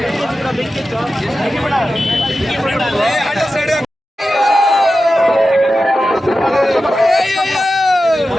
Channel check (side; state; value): both; normal; correlation 0.92